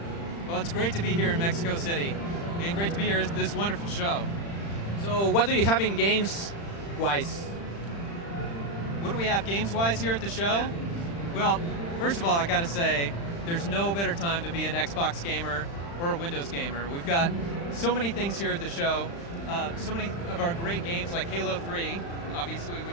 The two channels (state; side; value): late; right; 35 ms